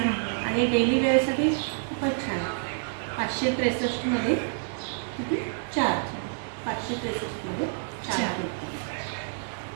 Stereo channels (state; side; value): silent; left; digital silence